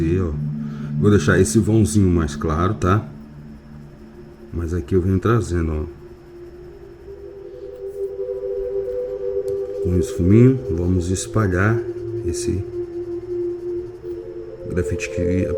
ó, vou deixar esse vãozinho mais claro, tá? Mas aqui eu venho trazendo, ó, com esfuminho, vamos espalhar esse grafite que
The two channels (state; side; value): identical; both; correlation 1.00